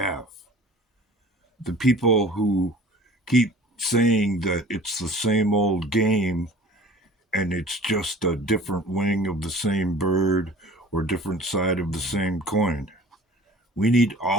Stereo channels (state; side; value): normal; both; correlation 0.45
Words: The people who keep saying that it's the same old game and it's just a different wing of the same bird or different side of the same coin. We need